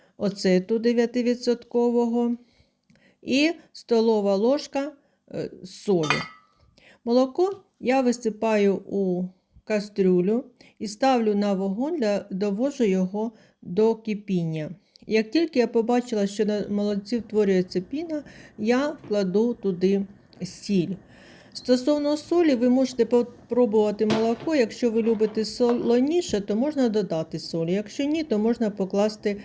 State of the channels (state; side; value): identical; both; correlation 1.00